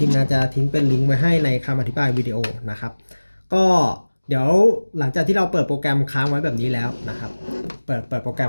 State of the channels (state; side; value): inverted; both; correlation -1.00